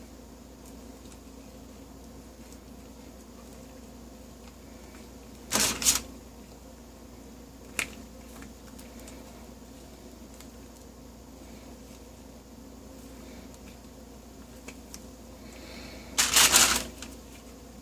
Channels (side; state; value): both; identical; correlation 1.00